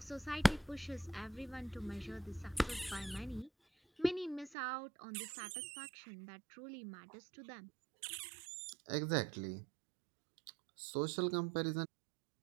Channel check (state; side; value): drops out; left; at 4.5 s